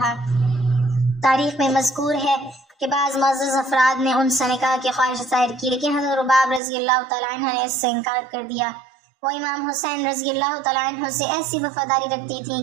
تاریخ میں مذکور ہے کہ بعض معزز افراد نے ان سے نکاح کی خواہش ظاہر کی، لیکن حضرت رباب رضی اللہ تعالیٰ عنہ نے اس سے انکار کر دیا۔ وہ امام حسین رضی اللہ تعالیٰ عنہ سے ایسی وفاداری رکھتی تھیں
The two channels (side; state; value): left; drops out; at 6.6 s